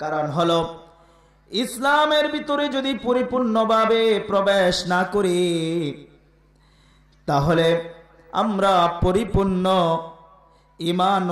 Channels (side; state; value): both; identical; correlation 1.00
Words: হলো ইসলামের ভিতরে যদি পরিপূর্ণভাবে প্রবেশ না করি তাহলে আমরা পরিপূর্ণ